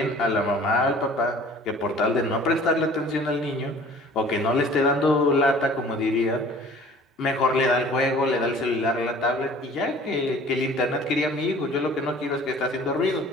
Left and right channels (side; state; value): both; normal; correlation 0.49